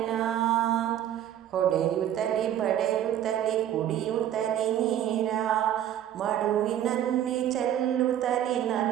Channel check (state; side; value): quieter; left; 11.1 dB